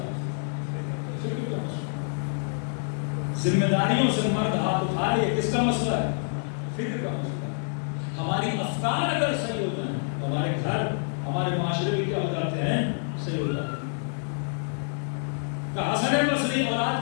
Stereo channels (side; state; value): right; silent; digital silence